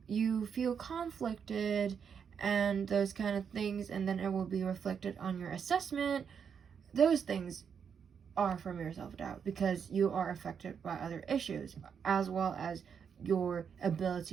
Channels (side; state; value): left; quieter; 7.0 dB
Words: feel conflicted and those kind of things, and then it will be reflected on your assessment, those things are from your self-doubt, because you are affected by other issues, as well as your